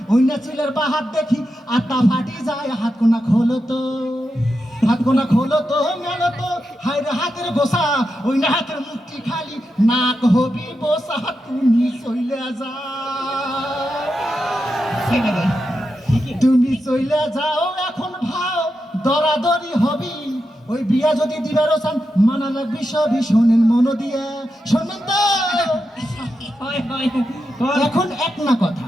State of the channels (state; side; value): normal; both; correlation 0.88